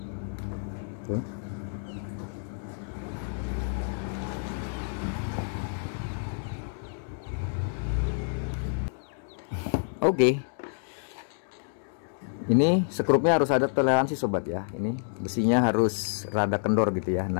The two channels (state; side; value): silent; right; digital silence